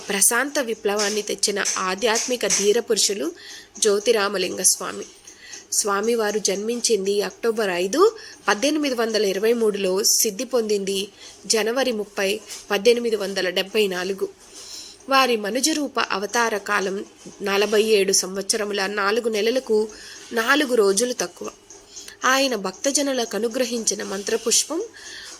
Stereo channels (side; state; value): both; identical; correlation 1.00